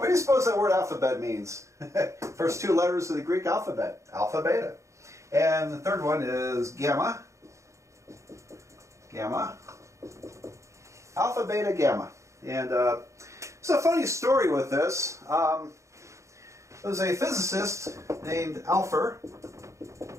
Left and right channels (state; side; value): late; left; 0.15 ms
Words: do you suppose that word alphabet means? First two letters of the Greek alphabet, alpha, beta. And the third one is gamma. Gamma. Alpha, beta, gamma. And it's a funny story with this. There was a physicist named Alpher